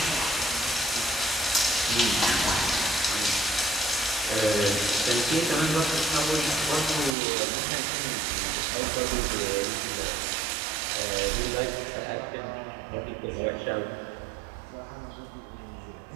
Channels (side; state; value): left; drops out; at 7.2 s